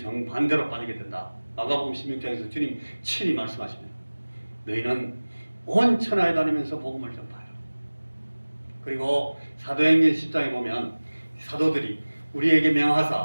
정반대로 빠지게 된다. 마가복음 16장에서 주님 친히 말씀하십니다. 너희는 온 천하에 다니면서 복음을 전파해라. 그리고 사도행전 10장에 보면 사도들이 우리에게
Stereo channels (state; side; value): inverted; both; correlation -1.00